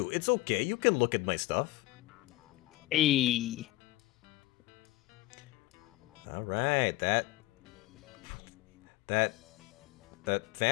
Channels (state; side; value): quieter; right; 18.8 dB